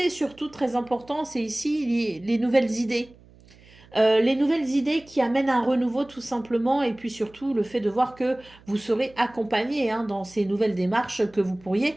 surtout, très important, c'est ici les nouvelles idées. Les nouvelles idées qui amènent un renouveau tout simplement et puis surtout le fait de voir que vous serez accompagné, hein, dans ces nouvelles démarches que vous pourriez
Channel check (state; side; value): noise; right; hum, 26 dB below the sound